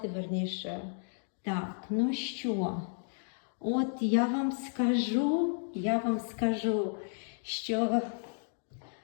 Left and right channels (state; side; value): silent; right; digital silence